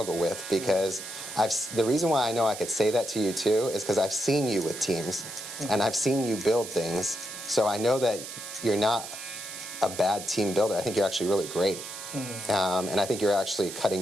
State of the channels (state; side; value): noise; right; hiss, 10 dB below the sound